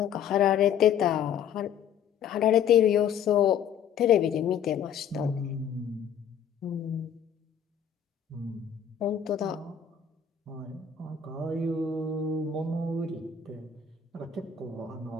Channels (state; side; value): quieter; right; 8.0 dB